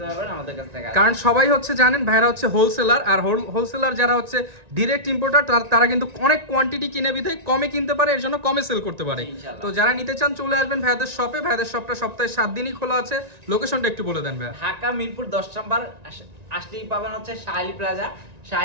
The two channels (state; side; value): late; left; 1.9 ms